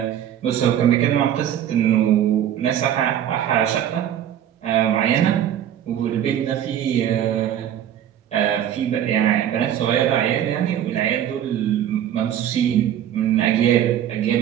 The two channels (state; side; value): quieter; left; 10.5 dB